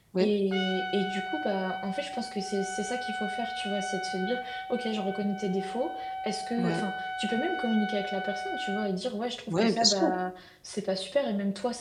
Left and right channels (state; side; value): identical; both; correlation 1.00